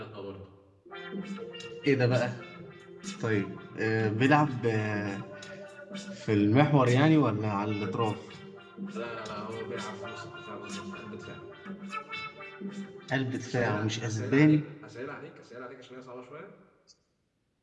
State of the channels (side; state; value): both; identical; correlation 1.00